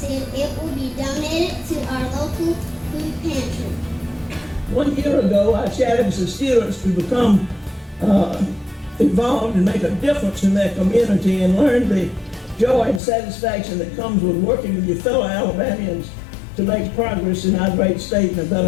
it will be donated to our local food pantry. 1 year ago, I challenged the students to become involved and make a difference in their community and learn the joy and satisfaction that comes with working with your fellow Alabamians to make progress in our great state and a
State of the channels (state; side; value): drops out; right; at 13.0 s